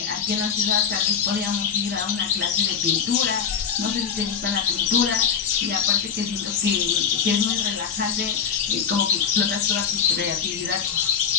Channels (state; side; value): quieter; right; 7.1 dB